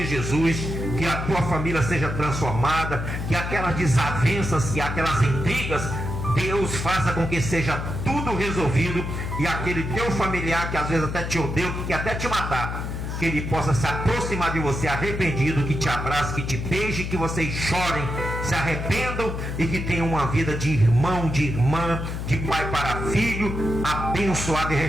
Jesus. Que a tua família seja transformada, que aquelas desavenças, que aquelas intrigas, Deus faça com que seja tudo resolvido, e aquele teu familiar que às vezes até te odeia, que quer até te matar, que ele possa se aproximar de você arrependido, que te abrace, que te beije, que vocês chorem, se arrependam e que tenham uma vida de irmão, de irmã, de pai para filho, abençoada e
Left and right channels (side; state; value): left; noise; hum, 4 dB below the sound